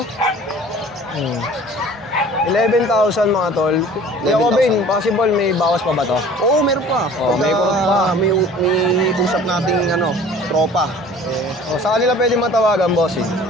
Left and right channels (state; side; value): normal; both; correlation 0.47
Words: 11,000 mga tol. Kaya ko, Ben, possible may bawas pa ba to? Oo, meron pa. Oo, may kurot pa. May usap nating tropa. O, sa kanila pwede matawagan, bossing.